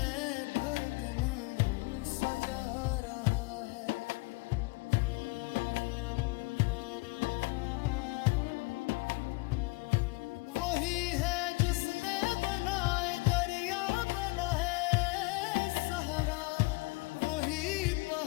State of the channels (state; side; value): quieter; right; 25.8 dB